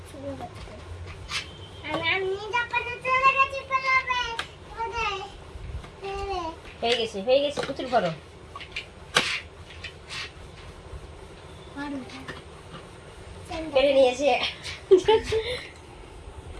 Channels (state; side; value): identical; both; correlation 1.00